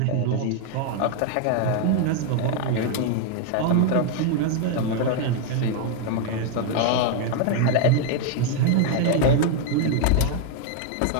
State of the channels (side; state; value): both; different; correlation 0.00